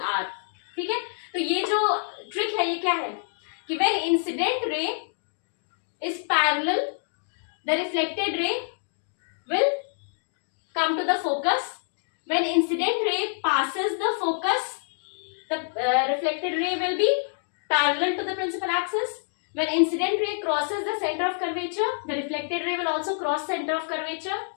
R. ठीक है. तो ये जो ट्रिक है ये क्या है कि when incident ray is parallel the reflected ray will come to the focus. When incident ray passes the focus, the reflected ray will be parallel to the principal axis. When incident ray crosses the center of curvature, the reflected ray will also cross center of curvature.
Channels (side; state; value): right; silent; digital silence